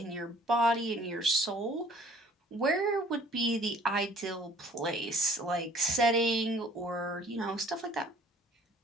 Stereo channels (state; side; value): normal; both; correlation 0.54